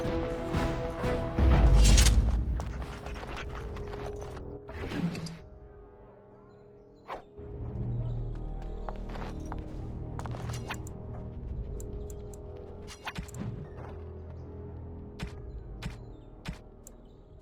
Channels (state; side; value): identical; both; correlation 1.00